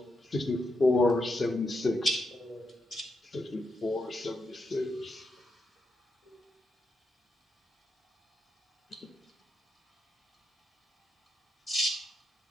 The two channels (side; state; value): both; normal; correlation 0.84